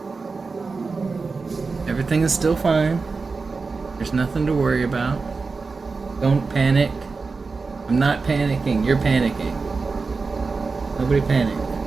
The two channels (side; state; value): left; quieter; 4.3 dB